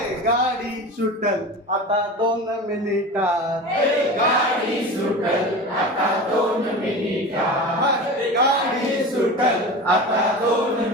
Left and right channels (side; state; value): both; normal; correlation 0.31